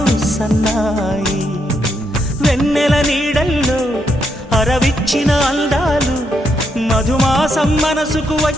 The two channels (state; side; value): normal; both; correlation 0.79